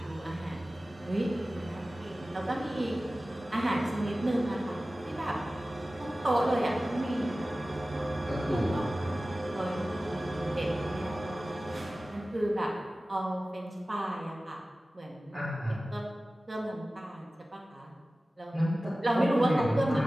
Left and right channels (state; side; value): normal; both; correlation 0.96